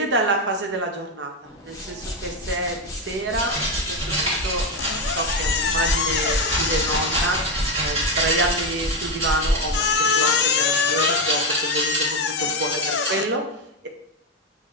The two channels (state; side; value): normal; both; correlation 0.10